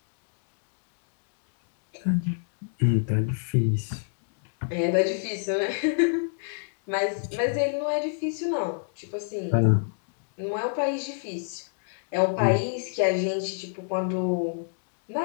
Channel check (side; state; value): right; silent; digital silence